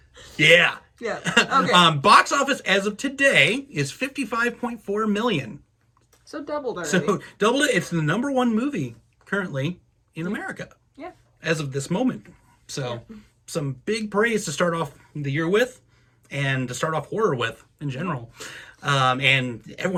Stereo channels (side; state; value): both; identical; correlation 1.00